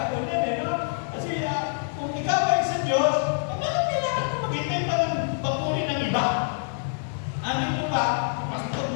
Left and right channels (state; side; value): silent; right; 58 dB below the other